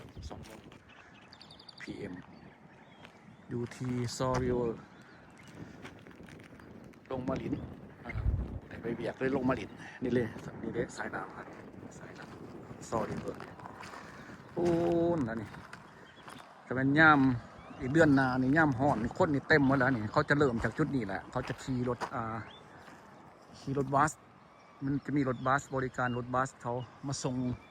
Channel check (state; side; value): identical; both; correlation 1.00